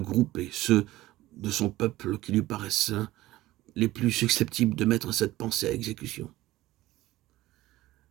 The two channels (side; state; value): left; quieter; 16.8 dB